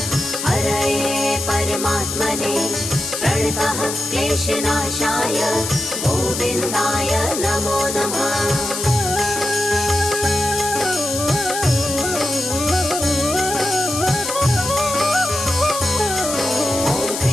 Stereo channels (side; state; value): left; noise; hiss, 4 dB below the sound